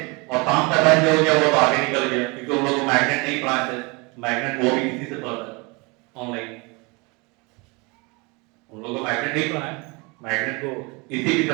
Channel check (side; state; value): left; quieter; 28.1 dB